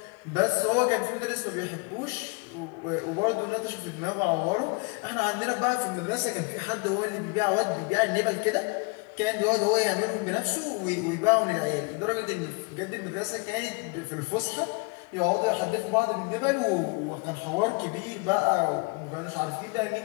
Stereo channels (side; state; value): right; quieter; 30.3 dB